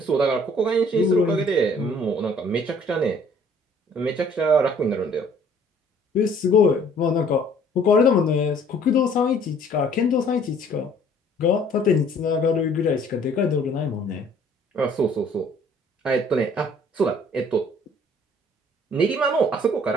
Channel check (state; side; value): normal; both; correlation 0.57